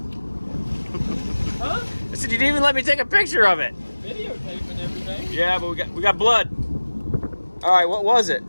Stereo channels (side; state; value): both; inverted; correlation -1.00